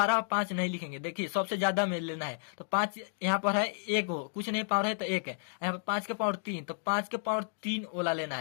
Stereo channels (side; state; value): right; silent; digital silence